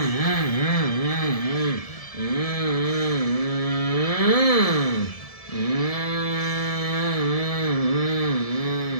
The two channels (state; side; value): late; right; 1.7 ms